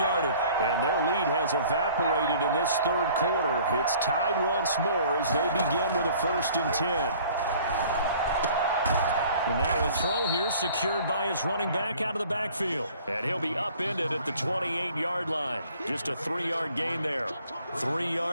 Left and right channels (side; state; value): both; inverted; correlation -0.53